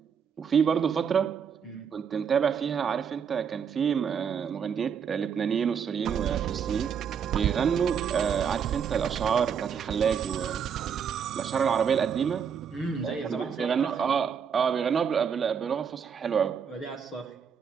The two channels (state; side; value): quieter; left; 7.2 dB